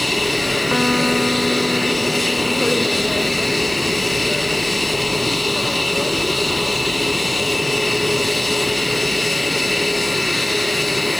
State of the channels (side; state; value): left; noise; hiss, 21 dB below the sound